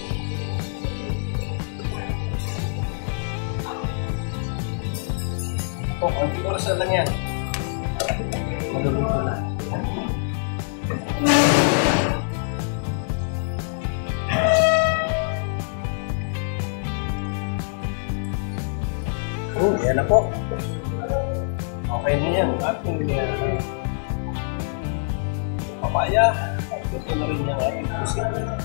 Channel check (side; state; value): right; silent; 62 dB below the other